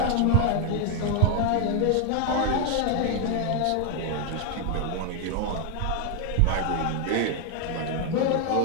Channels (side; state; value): both; different; correlation 0.01